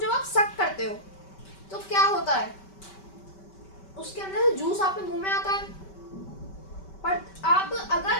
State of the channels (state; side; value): late; right; 5.2 ms